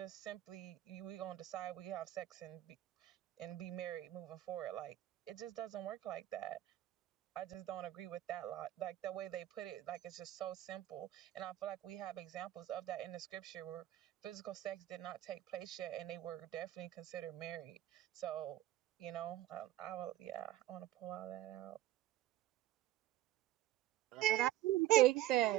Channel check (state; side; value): quieter; left; 14.4 dB